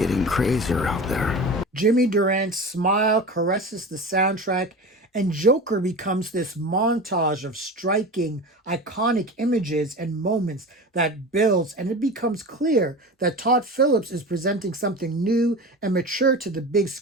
crazier out there? Jimmy Durant's smile caresses the soundtrack, and Joker becomes this montage of striking, iconic images and moments that builds, and it becomes clear that Todd Phillips is presenting something new and mature to the big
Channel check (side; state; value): both; normal; correlation 0.31